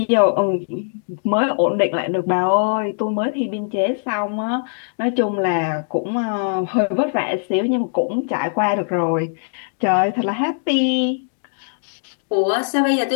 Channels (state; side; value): silent; right; digital silence